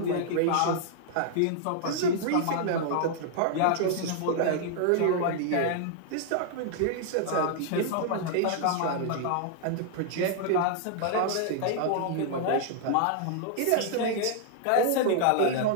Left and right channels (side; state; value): both; different; correlation -0.01